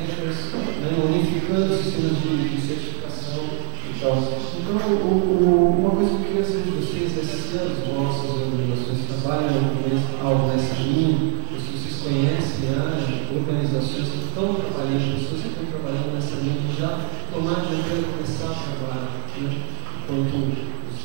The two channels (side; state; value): left; silent; digital silence